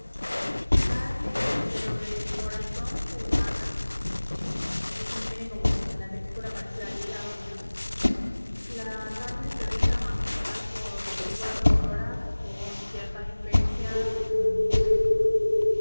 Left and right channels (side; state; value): both; inverted; correlation -1.00